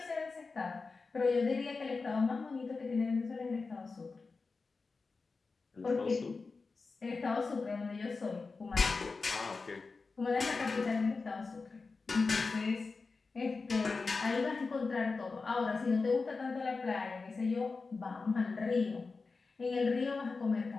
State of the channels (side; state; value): right; quieter; 4.2 dB